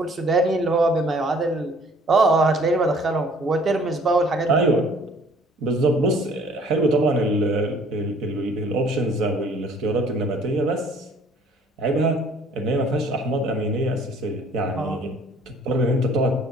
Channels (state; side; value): normal; both; correlation 0.56